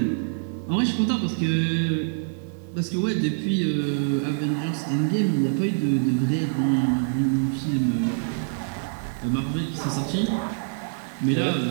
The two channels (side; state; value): left; silent; digital silence